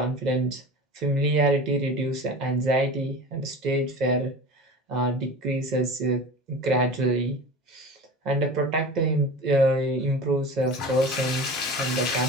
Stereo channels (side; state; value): both; normal; correlation 0.34